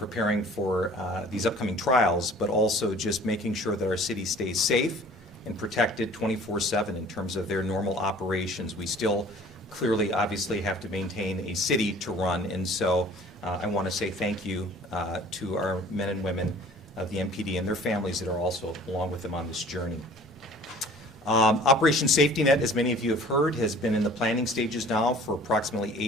for these upcoming trials, but also just making sure that our city stays safe and protected 24/7 in terms of their normal operations. We still clearly, obviously, have to maintain a city to run, and so I want to say thank you to our men and women of the MPD and their families that are also along with them on this journey. Operation Safety Net, as many of you have heard, has been in the planning stages now for approximately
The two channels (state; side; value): normal; both; correlation 0.49